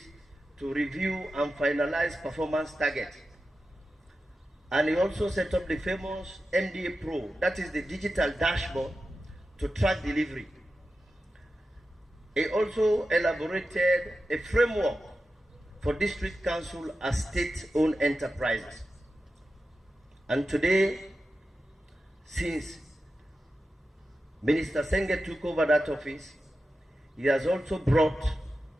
to review and finalize performance targets. And he also set up the famous MDA Pro, that is the digital dashboard to track delivery. He also elaborated a framework for district council as state-owned enterprises. And today, since Minister Senge took over that office, he has also brought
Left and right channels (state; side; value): normal; both; correlation 0.92